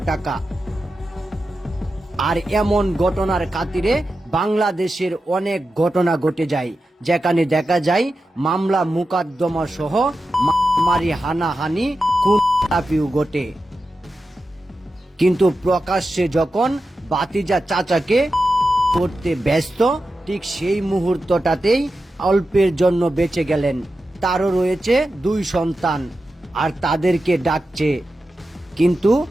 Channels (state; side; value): normal; both; correlation 0.91